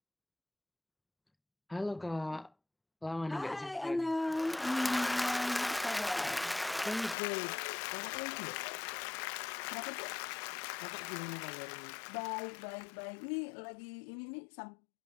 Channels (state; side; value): drops out; right; at 7.2 s